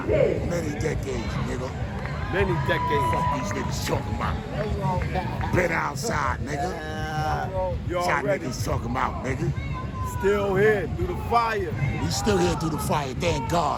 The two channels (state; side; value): identical; both; correlation 1.00